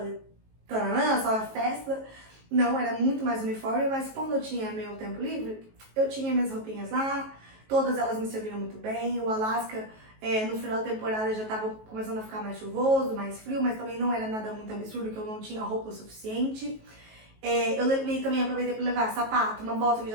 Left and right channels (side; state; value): left; late; 19 ms